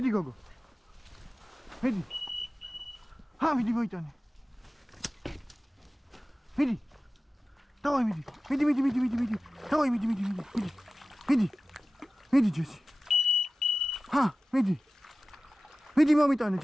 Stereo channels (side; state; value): both; normal; correlation 0.96